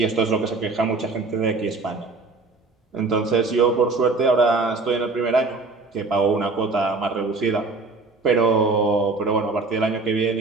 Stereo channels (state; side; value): quieter; left; 3.7 dB